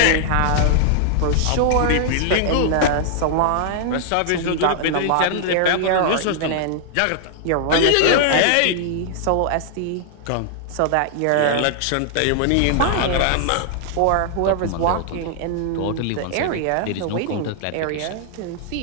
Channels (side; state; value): both; different; correlation -0.01